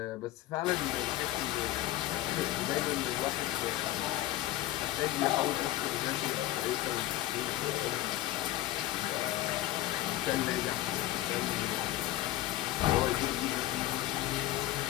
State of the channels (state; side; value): quieter; right; 15.2 dB